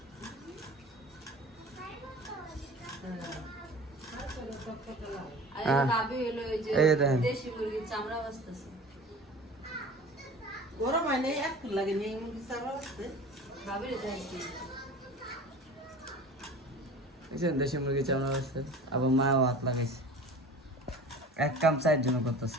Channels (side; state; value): both; normal; correlation 0.39